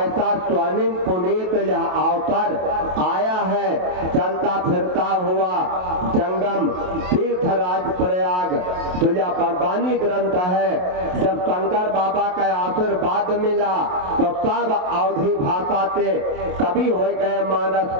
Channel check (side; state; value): left; late; 27 ms